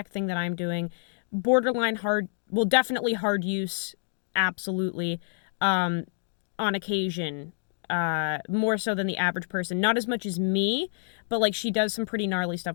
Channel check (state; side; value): silent; right; digital silence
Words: thing that I'm doing. Borderline hard, well, definitely hard use, absolutely. On occasion, more so than the average person. Not as much as me, but like she does some pretty gnarly